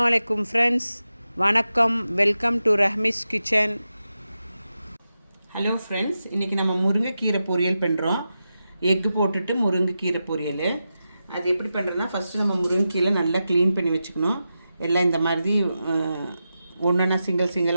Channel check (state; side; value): inverted; both; correlation -0.90